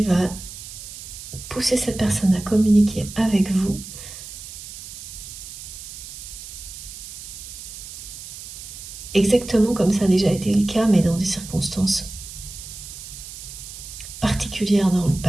va pousser cette personne à communiquer avec vous exactement comme ça a déjà été le cas, mais dans des circonstances particulières dans le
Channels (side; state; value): right; noise; hiss, 12 dB below the sound